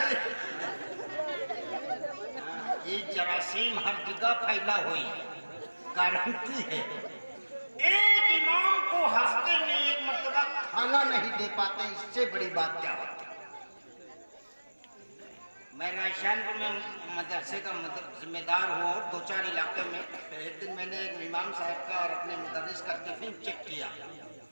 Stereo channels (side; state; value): both; inverted; correlation -1.00